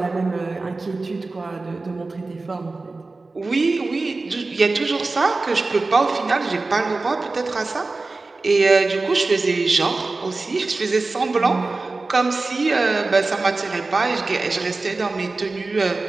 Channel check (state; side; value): quieter; left; 3.5 dB